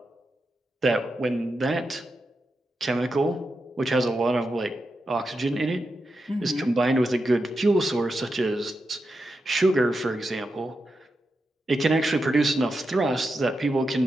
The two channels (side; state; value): both; normal; correlation 0.88